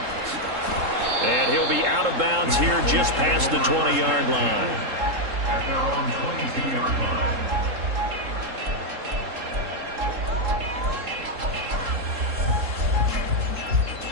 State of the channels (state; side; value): late; left; 3.7 ms